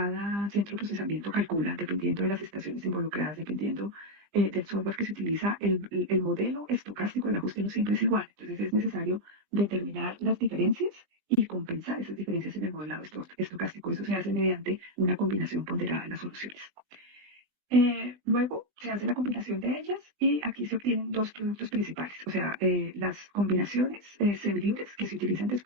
centro de procesamiento calcula, dependiendo de las estaciones involucradas, dependiendo del software que se utiliza, el modelo estocástico del ajuste no siempre es igual. Entonces es necesario determinar las diferencias y compensar esas diferencias en el modelado estocástico. Eso se hace mediante una combinación ponderada de las soluciones. Luego se hace la combinación de ellas y aquí se obtienen dos productos principales, o sea, las combinaciones semilibres que se utilizan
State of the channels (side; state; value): right; late; 5.5 ms